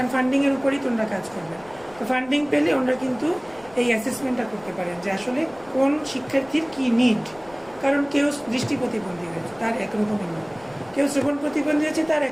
ফান্ডিংয়ের উপরেই তো ওনারা কাজ করবেন। তো ফান্ডিং পেলে ওনারা কিন্তু এই অ্যাসেসমেন্টটা করতে পারেন যে আসলে কোন শিক্ষার্থীর কি নিড। কারণ কেউ দৃষ্টি প্রতিবন্ধী হয়েছে, তার একরকমের নিড, কেউ শ্রবণ প্রতিবন্ধী হয়েছে, তার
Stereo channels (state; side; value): noise; left; rumble, 24 dB below the sound